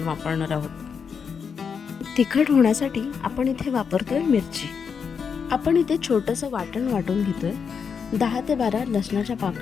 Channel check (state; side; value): quieter; right; 6.3 dB